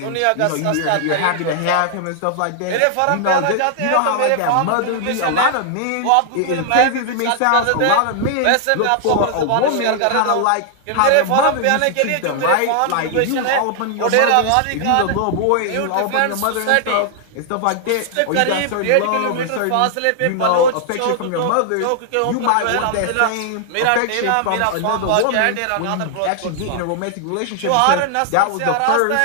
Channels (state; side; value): different; both; correlation 0.00